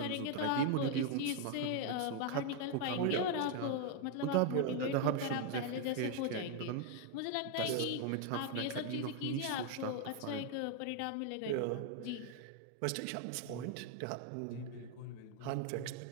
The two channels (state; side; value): different; both; correlation 0.01